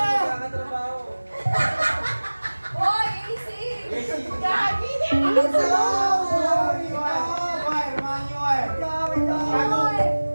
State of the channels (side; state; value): both; inverted; correlation -1.00